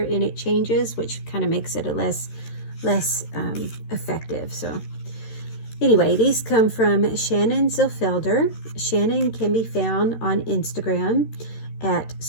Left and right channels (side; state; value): right; late; 13 ms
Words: in it changes, which kind of makes it a less effective. So anyway, these come from Shannon Zilfelder. Shannon can be found on Instagram at